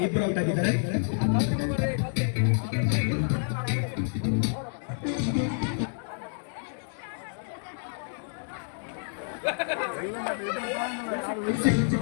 ಇಬ್ರು ಔಟ್ ಆಗಿದ್ದಾರೆ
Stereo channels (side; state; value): right; silent; digital silence